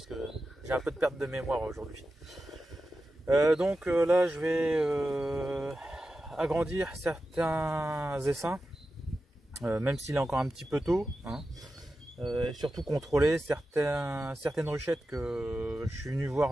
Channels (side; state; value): both; normal; correlation 0.92